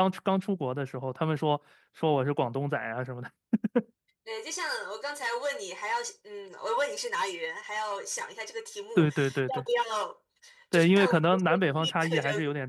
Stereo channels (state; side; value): identical; both; correlation 1.00